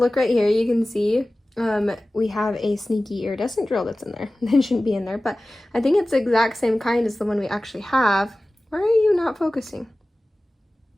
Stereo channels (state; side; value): normal; both; correlation 0.97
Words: right here, you can see we have a sneaky iridescent drill that's in there. It shouldn't be in there, but I think it's the exact same kind as the one we actually have. Why are you not focusing?